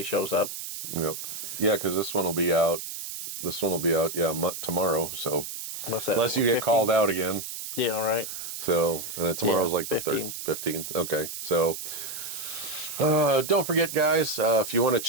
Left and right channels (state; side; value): noise; right; hiss, 8 dB below the sound